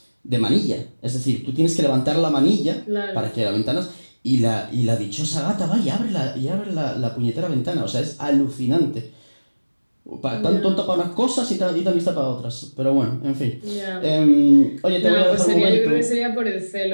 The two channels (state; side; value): inverted; both; correlation -1.00